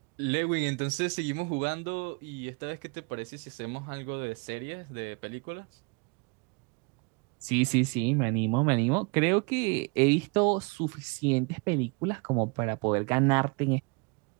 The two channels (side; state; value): left; quieter; 31.3 dB